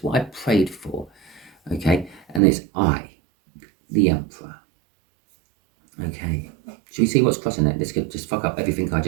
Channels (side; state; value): left; drops out; at 2.4 s